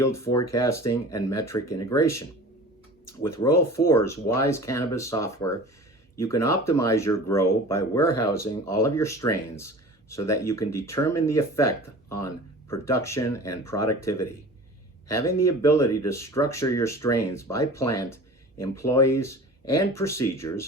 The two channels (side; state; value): both; normal; correlation 0.40